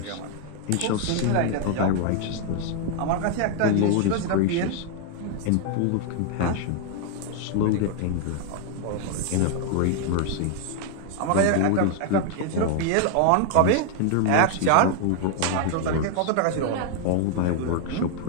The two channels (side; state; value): both; different; correlation 0.00